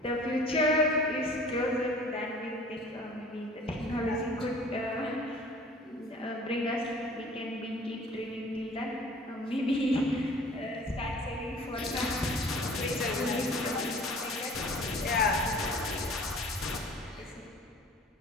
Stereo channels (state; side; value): normal; both; correlation 0.48